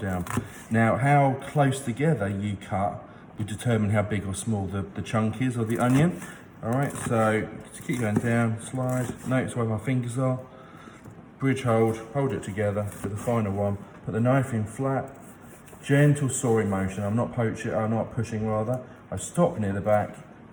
Now, how close together you cut will determine how big or small the chunk is of the onion. All right, so to keep going down, slide, notice where my fingers are, bridge hold it together for the final one, put the knife in flat, gentle sawing motion, I'm not pushing rather, I stop near the back,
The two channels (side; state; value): both; identical; correlation 1.00